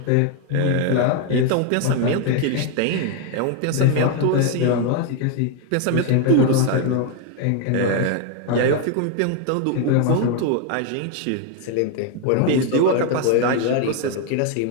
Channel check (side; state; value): both; different; correlation 0.01